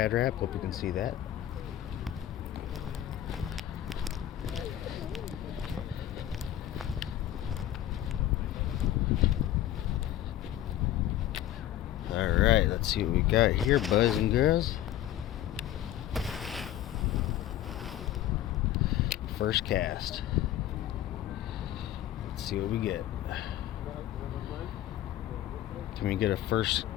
wrap. Hope you can see that. Alright, let's see what we got here, boys and girls. First cast. Let's see what we get. Can we get a first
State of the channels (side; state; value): right; quieter; 12.7 dB